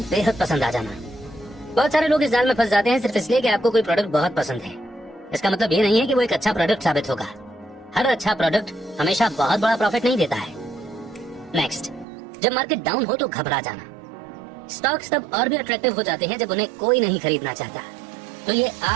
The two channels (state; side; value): drops out; left; at 12.1 s